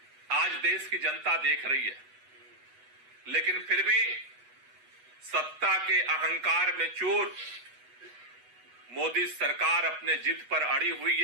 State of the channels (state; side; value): late; left; 8.1 ms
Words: आज देश की जनता देख रही है। लेकिन फिर भी सत्ता के अहंकार में चूर मोदी सरकार अपने जिद पर अड़ी हुई